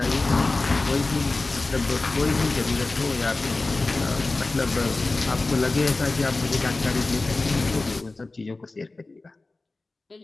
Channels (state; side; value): quieter; right; 3.3 dB